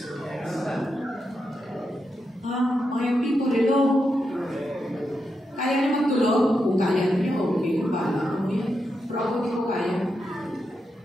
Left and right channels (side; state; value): both; normal; correlation 0.85